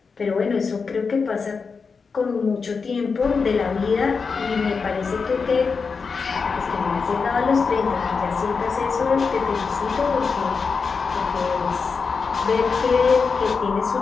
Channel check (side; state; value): right; quieter; 5.1 dB